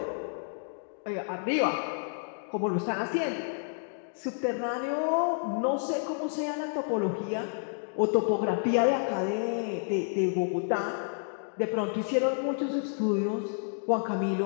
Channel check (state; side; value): silent; right; digital silence